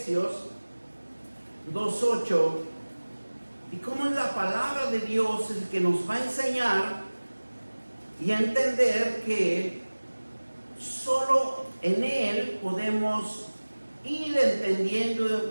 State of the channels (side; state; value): both; inverted; correlation -1.00